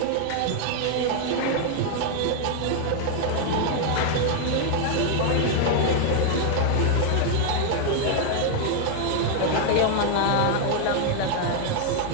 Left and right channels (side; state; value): both; different; correlation 0.00